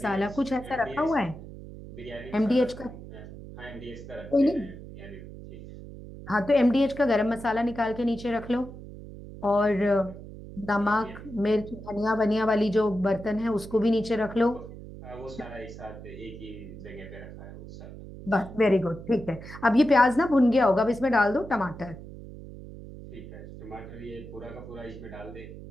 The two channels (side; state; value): right; noise; hum, 14 dB below the sound